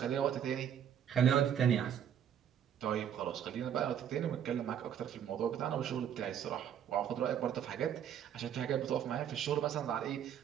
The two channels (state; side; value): quieter; left; 9.1 dB